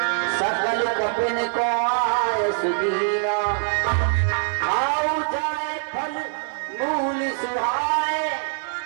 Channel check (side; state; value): left; silent; 63 dB below the other